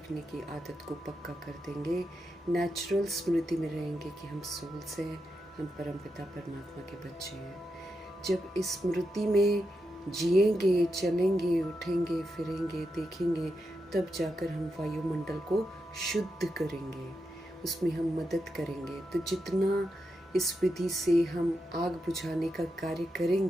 की आदत को पक्का कर देंगे, नेचुरल स्मृति में रहेंगे कि हम सोल्स हैं, हम परमपिता परमात्मा के बच्चे हैं। जब इस स्मृति में जिएंगे, चलेंगे, उठेंगे, फिरेंगे, देखेंगे, तब जाकर हम वायुमंडल को शुद्ध करेंगे, उसमें हम मदद करेंगे। तो जितना इस विधि से हम आग बुझाने का कार्य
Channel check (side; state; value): both; normal; correlation 0.86